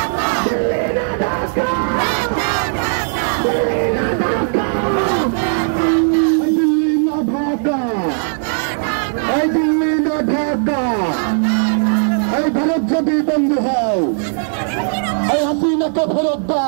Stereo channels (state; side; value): silent; left; 59 dB below the other